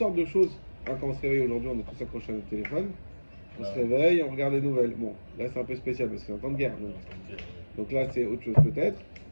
de choses. Hein, quand on se réveille aujourd'hui, on est tous accrochés à notre téléphone. On se réveille, on regarde les nouvelles. Bon, là c'est un peu spécial parce que c'est un temps de guerre. Donc là c'est autre chose peut-être.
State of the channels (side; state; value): both; inverted; correlation -1.00